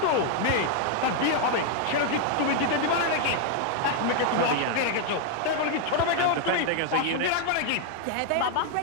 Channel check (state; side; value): different; both; correlation 0.00